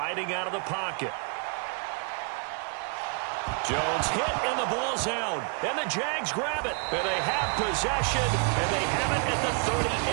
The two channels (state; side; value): quieter; left; 36.3 dB